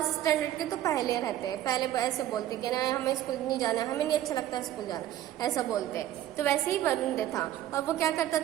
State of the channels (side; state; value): left; quieter; 12.7 dB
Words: स्टैंडर्ड के तो पहले रहते हैं, पहले ऐसे बोलते कि ना हमें स्कूल नहीं जाना, हमें नहीं अच्छा लगता स्कूल जाना, ऐसा बोलते हैं। तो वैसे ही वरुण था, और वो क्या करता